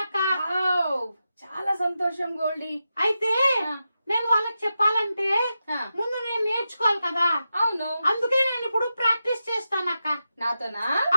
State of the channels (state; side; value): inverted; both; correlation -0.89